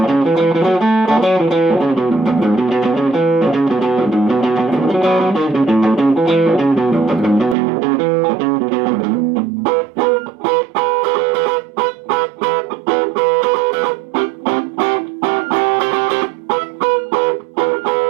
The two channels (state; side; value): drops out; left; at 7.6 s